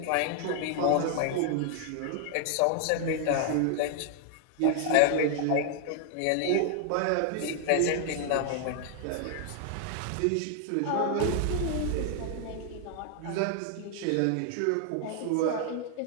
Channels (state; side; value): different; both; correlation 0.00